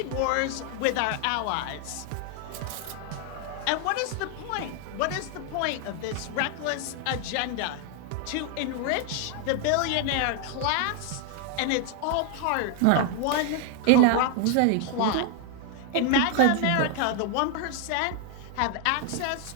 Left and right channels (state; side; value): different; both; correlation 0.00